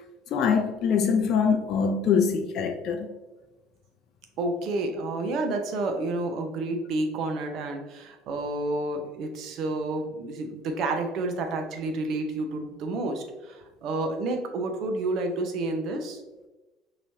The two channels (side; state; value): both; normal; correlation 0.52